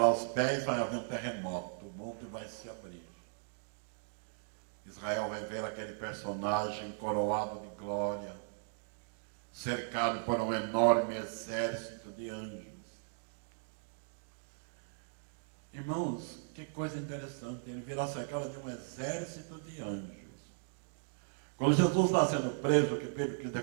os pés, vai haver um terremoto. O monte vai se abrir. Israel vai ver aquele personagem coroado de glória, cercado por um enorme exército de anjos. Irmãos, que coisa interessante, ele virá cercado de um exército de anjos. Quando Jesus está sendo preso, que Pedro quis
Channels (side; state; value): left; silent; digital silence